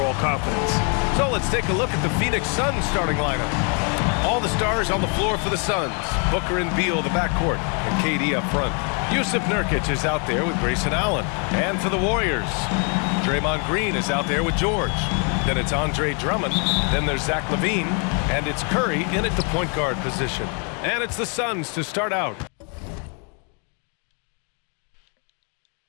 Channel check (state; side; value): quieter; right; 37.9 dB